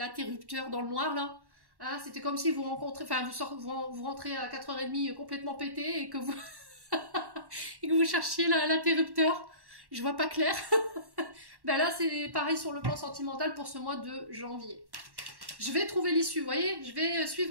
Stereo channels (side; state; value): left; late; 1.1 ms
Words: dans le noir, là. Hein, c'était comme si vous rencontrez, enfin, vous rentrez à 4h30 complètement pété et que vous... et que vous cherchiez l'interrupteur, je vois pas clair. Ben là, c'est pareil sur le plan sentimental pour ce mois de janvier. Je vais trouver l'issue, vous voyez, je vais